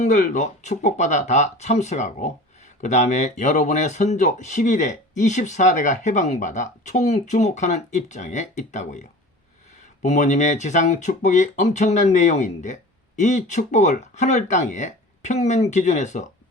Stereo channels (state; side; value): normal; both; correlation 0.39